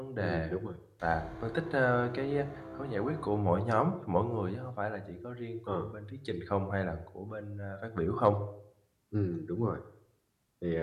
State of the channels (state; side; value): identical; both; correlation 1.00